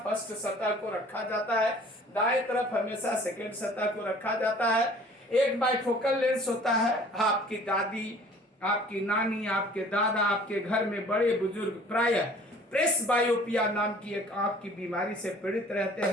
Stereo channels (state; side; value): normal; both; correlation 0.51